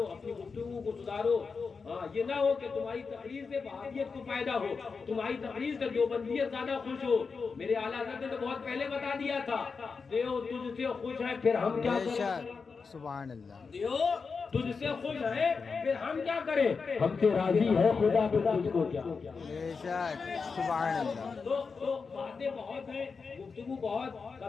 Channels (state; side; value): quieter; right; 5.0 dB